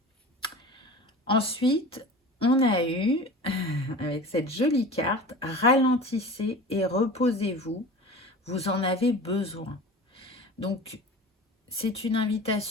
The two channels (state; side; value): normal; both; correlation 0.36